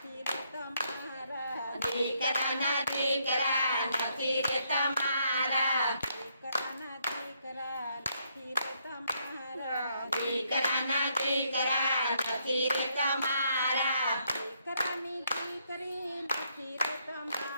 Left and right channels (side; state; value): both; inverted; correlation -0.74